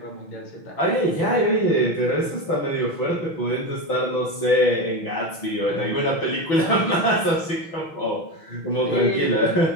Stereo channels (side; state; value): right; late; 6.2 ms